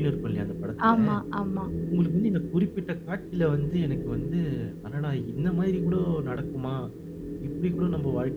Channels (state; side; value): identical; both; correlation 1.00